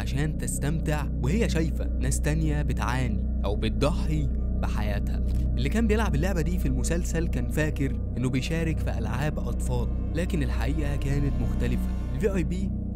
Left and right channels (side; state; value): both; identical; correlation 1.00